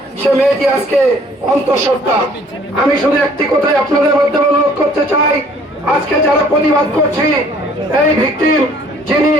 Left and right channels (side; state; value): both; normal; correlation 0.57